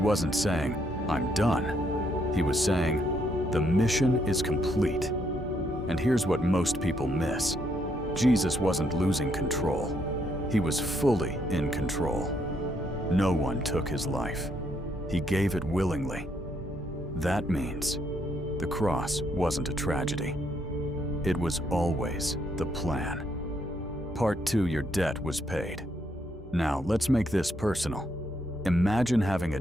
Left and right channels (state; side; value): normal; both; correlation 0.73